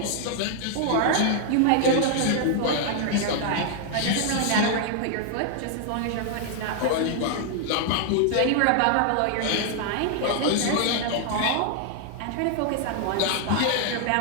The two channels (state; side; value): different; both; correlation 0.00